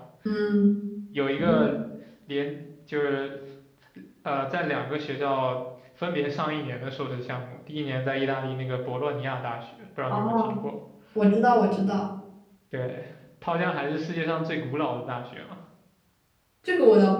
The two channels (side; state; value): both; identical; correlation 1.00